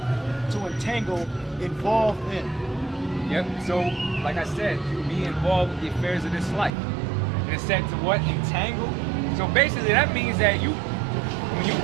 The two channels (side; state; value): left; drops out; at 6.7 s